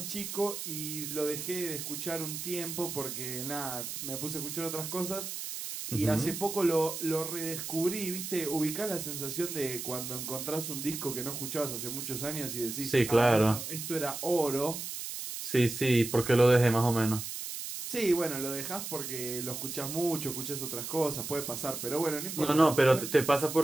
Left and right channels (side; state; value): right; noise; hiss, 6 dB below the sound